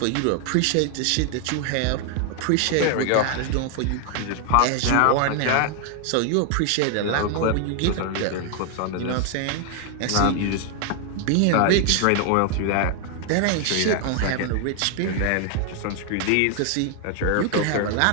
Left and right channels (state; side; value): different; both; correlation 0.00